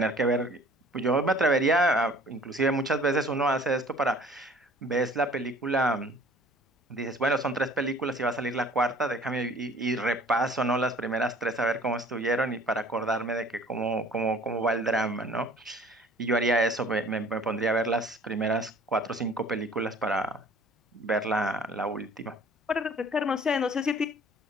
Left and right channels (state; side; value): normal; both; correlation 0.51